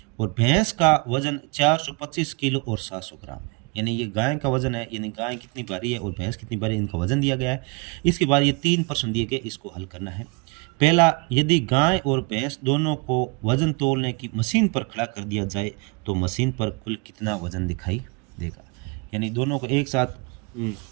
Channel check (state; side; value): quieter; left; 30.2 dB